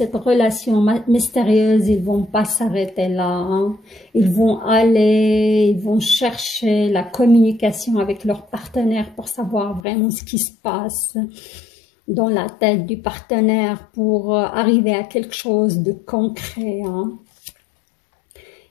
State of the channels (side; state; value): right; drops out; at 9.8 s